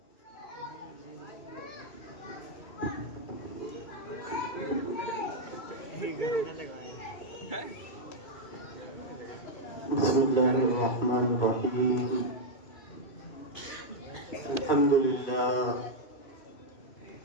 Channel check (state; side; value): late; right; 2.2 ms